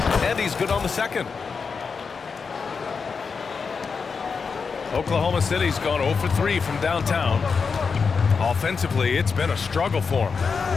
And he's good on the second. Oklahoma City's gone 0 for 3 from downtown. Offensively, it's been a struggle for them.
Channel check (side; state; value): right; quieter; 5.3 dB